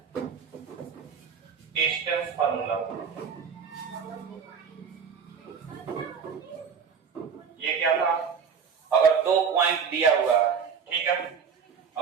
डिस्टेंस फॉर्मूला। ये क्या था? अगर दो पॉइंट दिया हुआ है, ठीक है,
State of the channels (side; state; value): left; quieter; 6.5 dB